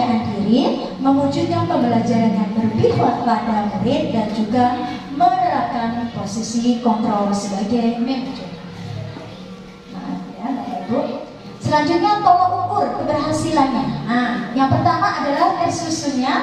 diri, mewujudkan pembelajaran yang berpihak pada murid, dan juga menerapkan posisi kontrol sebagai manajer. Nah, ya Bapak Ibu. Selanjutnya tolak ukur keberhasilannya. Nah, yang pertama adalah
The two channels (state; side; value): identical; both; correlation 1.00